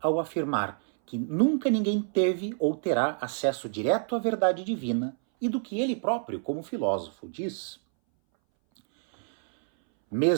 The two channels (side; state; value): left; silent; 60 dB below the other